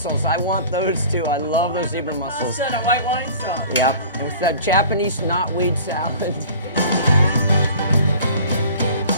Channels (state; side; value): inverted; both; correlation -0.44